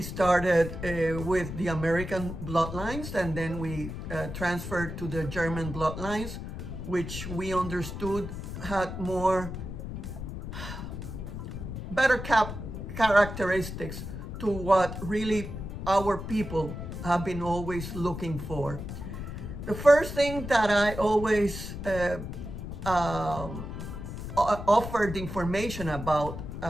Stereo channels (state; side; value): noise; left; rumble, 7 dB below the sound